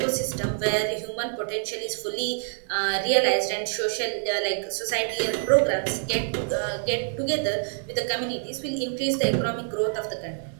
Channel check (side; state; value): left; silent; digital silence